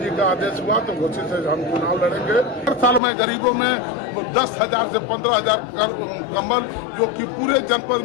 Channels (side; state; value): right; drops out; at 3.0 s